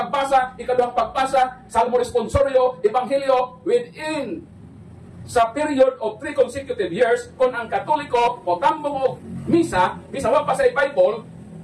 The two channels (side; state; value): both; identical; correlation 1.00